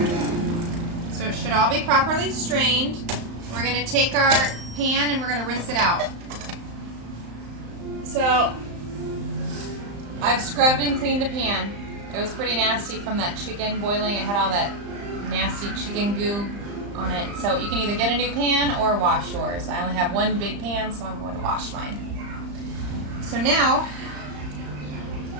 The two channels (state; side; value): late; left; 35 ms